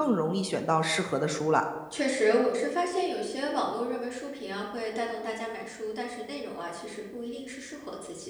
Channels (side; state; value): both; identical; correlation 1.00